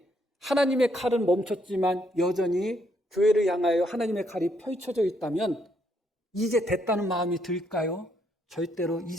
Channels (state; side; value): normal; both; correlation 0.73